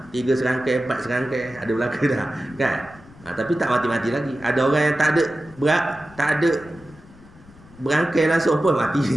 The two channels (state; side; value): noise; left; rumble, 23 dB below the sound